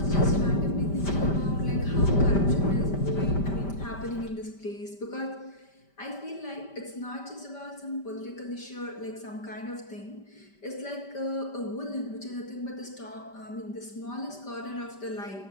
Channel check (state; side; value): late; right; 5.1 ms